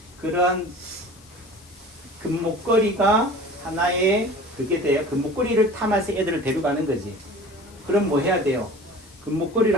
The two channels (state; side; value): noise; left; hiss, 26 dB below the sound